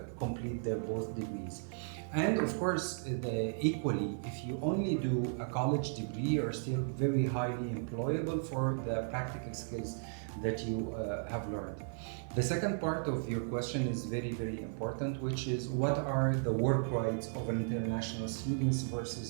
complete their both degrees. And of course, equally, if you only do a college degree, you're still very highly employable for the practical skills that you have learned. The second part of your question is very, very important, which is what are the work rights of an international students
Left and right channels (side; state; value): left; silent; 54 dB below the other